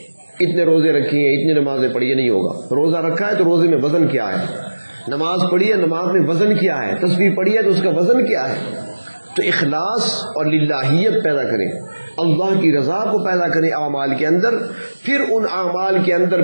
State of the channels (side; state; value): both; inverted; correlation -1.00